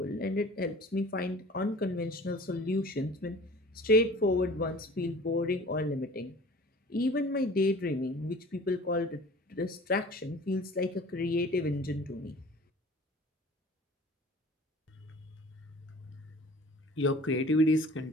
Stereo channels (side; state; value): both; normal; correlation 0.45